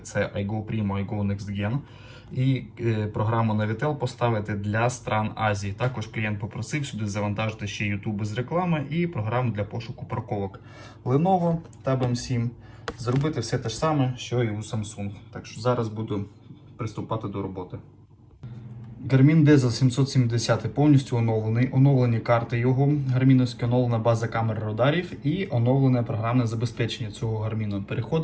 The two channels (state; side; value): identical; both; correlation 1.00